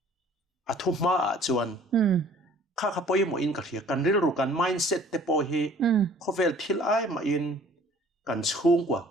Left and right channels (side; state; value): both; normal; correlation 0.53